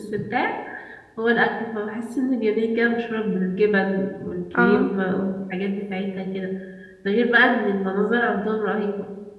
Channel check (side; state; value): both; identical; correlation 1.00